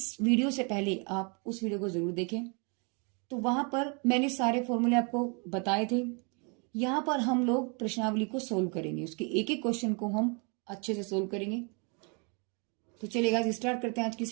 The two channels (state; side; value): quieter; left; 34.3 dB